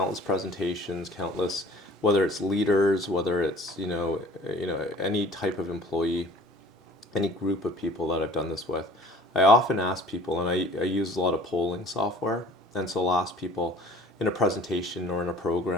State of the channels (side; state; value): both; normal; correlation 0.48